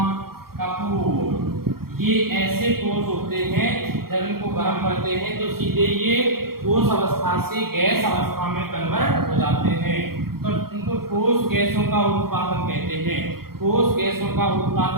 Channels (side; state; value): left; late; 0.94 ms